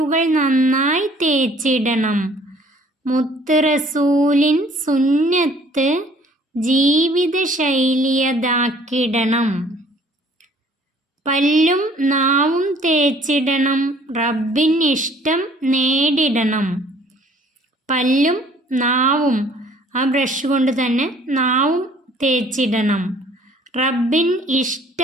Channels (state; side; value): normal; both; correlation 0.56